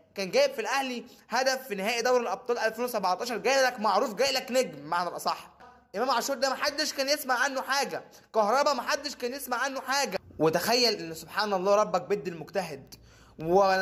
كان جايب في الاهلي هدف في نهائي دوري الابطال 2017، جاي لك معروف، جاي لك نجم بمعنى الاصح. امام عاشور ده محدش كان يسمع عنه حاجه، كهربا محدش كان يسمع عنه حاجه. وتخيل ان سبحان الله ربك بيد المجتهد.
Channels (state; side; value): identical; both; correlation 1.00